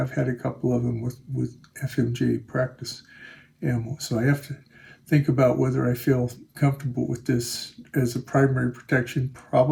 had a couple of them with FMJ practice ammo. So I have to think about whether I feel comfortable with this as a primary protection.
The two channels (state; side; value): identical; both; correlation 1.00